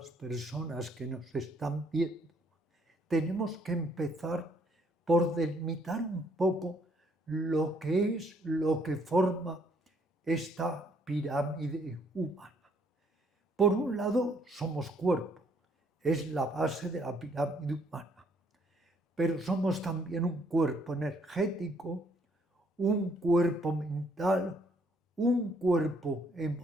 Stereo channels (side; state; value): both; normal; correlation 0.67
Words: personas que nos están viendo, tenemos que empezar por delimitar un poco lo que forma esta pirámide humana. Por un lado, somos cuerpo, es la base de la pirámide humana, pero somos también un cuerpo energético, un cuerpo mental, un cuerpo